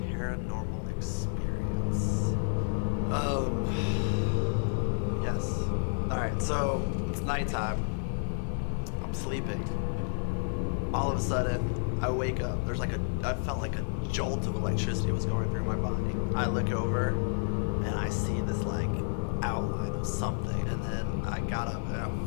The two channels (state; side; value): silent; right; 57 dB below the other